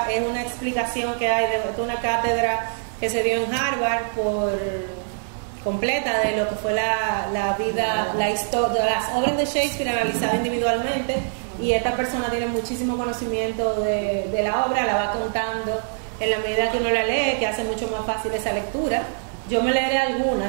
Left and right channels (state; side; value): silent; left; digital silence